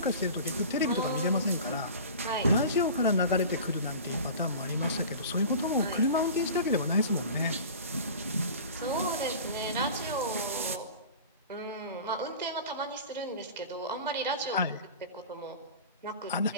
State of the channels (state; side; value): inverted; both; correlation -0.37